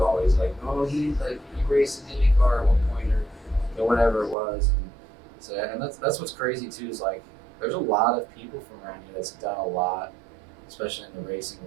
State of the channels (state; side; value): drops out; left; at 4.4 s